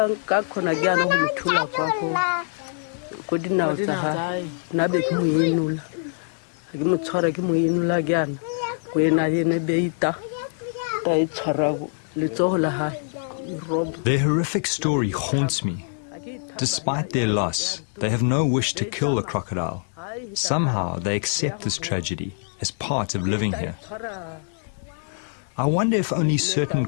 khona jana ho mthula kwakho ko dinawo tsa ha na be ke moyinula ke motshwara ke moyinula jana ko ena yene be ita ta itshwara le tsohola ha. Their horrific story haunts me. Despite their loss, they have no wish to kill the crocodile. Somehow they accept this tragedy as part of living here. I wonder if only certain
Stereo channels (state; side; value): silent; right; 61 dB below the other